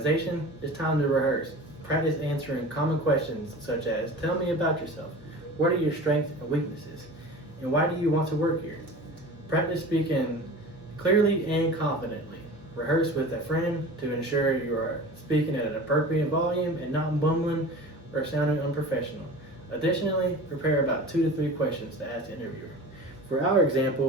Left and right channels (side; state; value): both; normal; correlation 0.37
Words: it's time to rehearse. Practice answering common questions such as, tell me about yourself. What are your strengths and weaknesses? And why do you want to work here? Practice speaking clearly and confidently. Rehearse with a friend to ensure you are speaking at an appropriate volume and not bumbling or sounding unprofessional. Additionally, prepare about 2 to 3 questions to ask the interviewer. For our